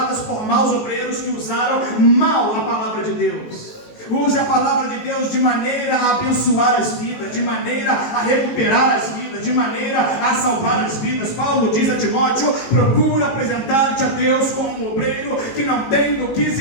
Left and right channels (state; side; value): late; right; 18 ms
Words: por maus obreiros que usaram mal a palavra de Deus? Use a palavra de Deus de maneira a abençoar as vidas, de maneira a recuperar as vidas, de maneira a salvar as vidas. Paulo diz a Timóteo: procura apresentar-te a Deus como um obreiro que não tem do que